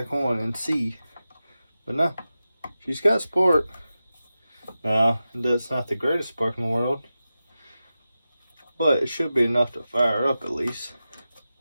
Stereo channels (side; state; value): both; inverted; correlation -0.93